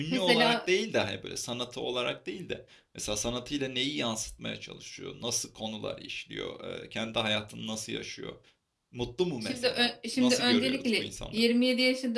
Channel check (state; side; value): identical; both; correlation 1.00